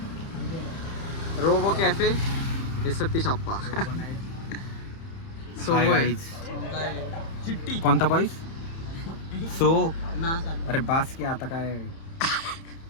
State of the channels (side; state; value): right; late; 30 ms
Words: रोबो कैफे ये सतीश अप्पा. सो चिट्टी कोणता बॉईस सो अरे बास की आता काय